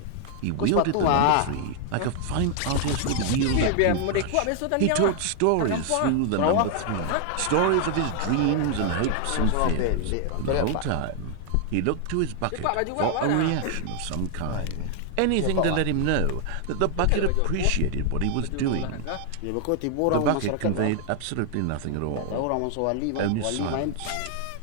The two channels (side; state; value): both; different; correlation 0.00